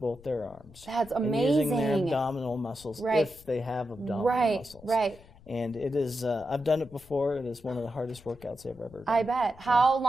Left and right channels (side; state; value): left; noise; rumble, 23 dB below the sound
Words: their arms. That's amazing. And using their abdominal muscles if they have abdominal muscles. Right. And it is, I've done it before. It is one of the hardest workouts I've ever done. I bet. How